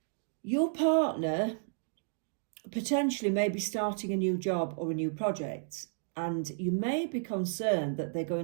Your partner potentially may be starting a new job or a new project, and you may be concerned that they're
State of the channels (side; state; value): left; silent; digital silence